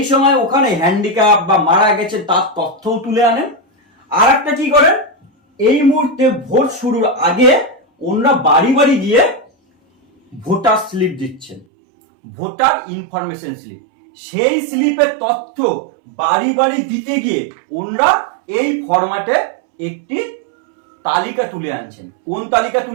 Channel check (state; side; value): drops out; left; at 11.7 s